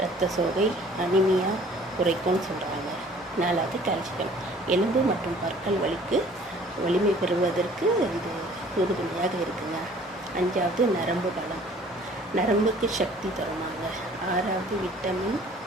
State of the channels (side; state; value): both; normal; correlation 0.53